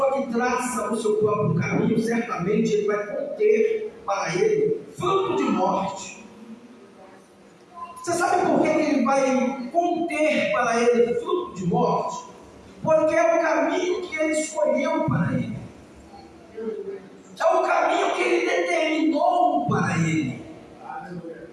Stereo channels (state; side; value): identical; both; correlation 1.00